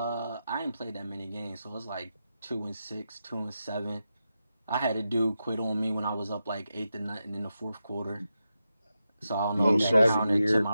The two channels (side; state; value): both; inverted; correlation -0.89